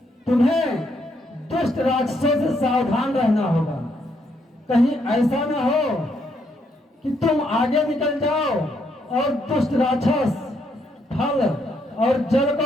तुम्हें दुष्ट राक्षसों से सावधान रहना होगा। कहीं ऐसा न हो कि तुम आगे निकल जाओ और दुष्ट राक्षस फल और जल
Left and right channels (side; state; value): both; normal; correlation 0.74